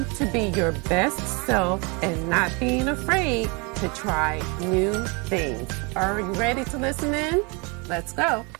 to be your best self and not being afraid to try new things. Are you ready to listen in? Let's go.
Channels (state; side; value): quieter; left; 30.6 dB